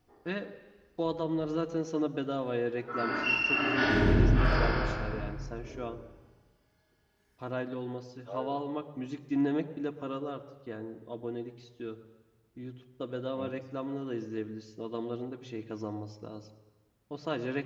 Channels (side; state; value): both; identical; correlation 1.00